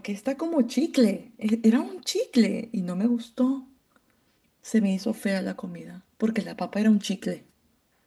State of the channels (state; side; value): identical; both; correlation 1.00